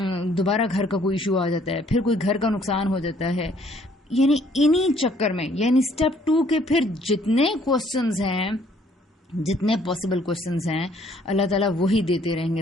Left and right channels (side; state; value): both; normal; correlation 0.62